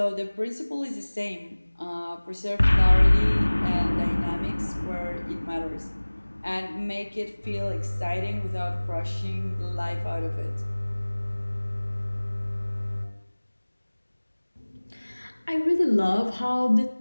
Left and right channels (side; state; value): both; inverted; correlation -1.00